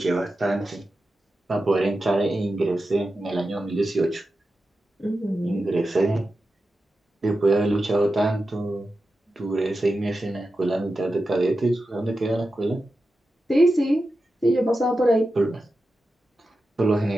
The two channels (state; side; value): normal; both; correlation 0.91